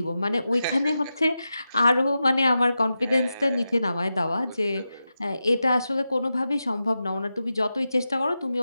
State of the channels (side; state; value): both; inverted; correlation -0.91